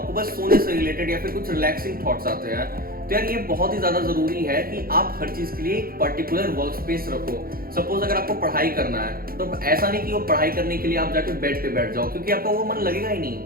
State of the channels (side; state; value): left; late; 0.43 ms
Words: बस सोने से रिलेटेड या फिर कुछ रिलैक्सिंग थॉट्स आते हैं। तो यार ये बहुत ही ज्यादा जरूरी है कि आप हर चीज के लिए एक पर्टिकुलर वर्क स्पेस रखो। सपोज अगर आपको पढ़ाई करना है तो ऐसा नहीं कि वो पढ़ाई करने के लिए आप जाके बेड पे बैठ जाओ, क्योंकि आपका वो मन लगेगा ही